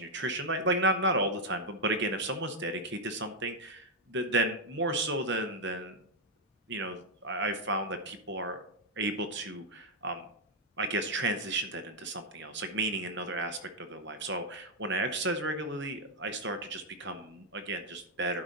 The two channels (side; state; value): both; normal; correlation -0.01